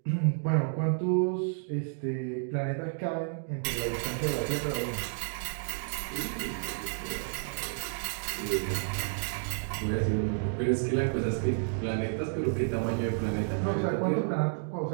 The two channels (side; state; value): left; silent; digital silence